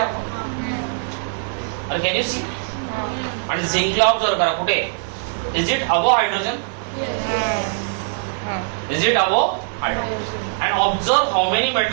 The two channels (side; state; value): left; silent; 65 dB below the other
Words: आपको? और can you see? And zinc ला ऑब्जर्व करा कुठे. Is it above hydrogen? Is it above hydrogen? And observe how many